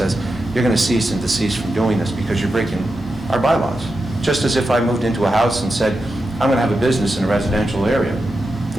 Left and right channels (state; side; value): normal; both; correlation 0.89